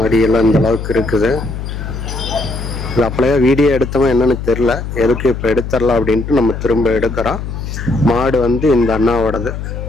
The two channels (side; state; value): left; noise; hum, 7 dB below the sound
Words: இந்த அளவுக்கு இருக்குது. இது அப்படியே வீடியோ எடுத்தவன் என்னன்னு தெரில, எதுக்கு இப்போ எடுத்துடலாம் அப்படின்ட்டு நம்ம திரும்ப எடுக்கிறோம். மாடு வந்து இந்த அண்ணாவோடது,